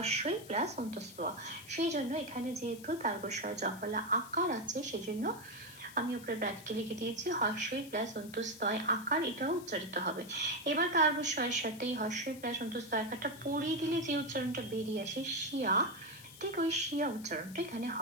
প্লাস অন্তস্থ। সেই জন্য এখানে যেহেতু তার্গ জফলা আকার আছে সেজন্য আমি উপরে ব্র্যাকেটে লিখে দিয়েছি হস্যই প্লাস অন্তস্তয় আকার, এটাও উচ্চারিত হবে। এবার তার্বস্বয়ের সাথে এই হস্যই প্লাস অন্তস্তয় আকারটা পড়িয়ে দিলে যে উচ্চারণটা বেরিয়ে আসে শিয়া, ঠিক ওই শিয়া উচ্চারণটা এখানে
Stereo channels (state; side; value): noise; left; hiss, 18 dB below the sound